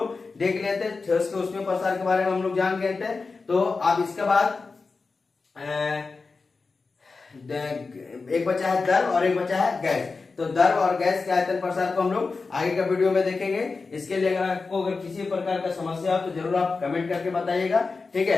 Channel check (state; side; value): quieter; right; 4.2 dB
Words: देख लेते, ठोस के उसमें प्रसार के बारे में हम लोग जान गए थे। तो अब इसके बाद एक बचा है द्रव और एक बचा है गैस। तो द्रव और गैस के आयतन प्रसार को हम लोग आगे का वीडियो में देखेंगे। इसके लिए अगर आपको अगर किसी प्रकार का समस्या हो तो जरूर आप कमेंट करके बताइएगा, ठीक